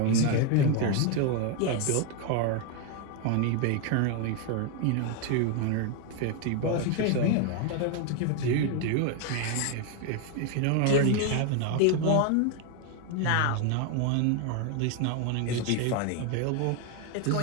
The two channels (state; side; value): different; both; correlation 0.01